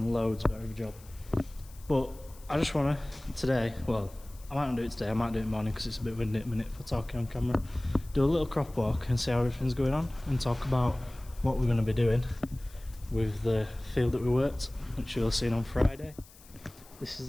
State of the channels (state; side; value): noise; left; hiss, 23 dB below the sound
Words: loads better of a job. But I just want to, today, well, I might not do it today, I might do it in the morning because it's a bit windy at the minute for talking on camera. Do a little crop walk and see how everything's going on and talk about what we're going to be doing with the field that we worked, which you'll have seen on Friday. This is